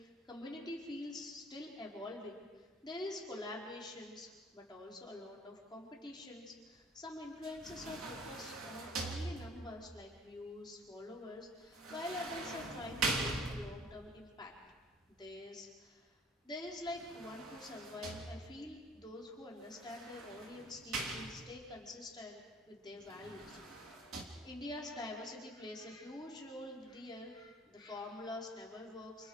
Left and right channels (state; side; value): normal; both; correlation 0.52